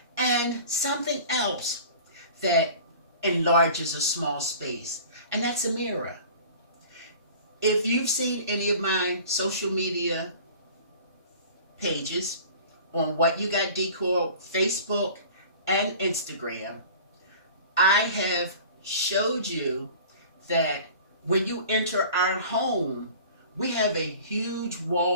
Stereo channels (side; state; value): both; inverted; correlation -0.43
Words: And something else that enlarges a small space, and that's a mirror. If you've seen any of my social media pages on What You Got Decor, Facebook and Instagram, I have showed you that when you enter our home, we have a huge